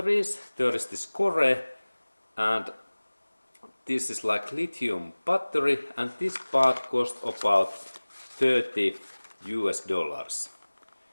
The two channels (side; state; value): both; inverted; correlation -1.00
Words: There is this Core, and this is like lithium battery, and this part costs about $30 US.